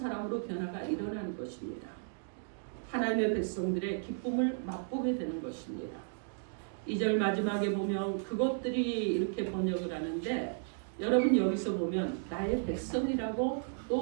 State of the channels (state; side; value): silent; left; digital silence